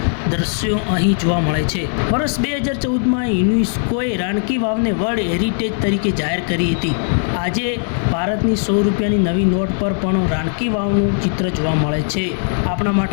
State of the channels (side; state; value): right; silent; digital silence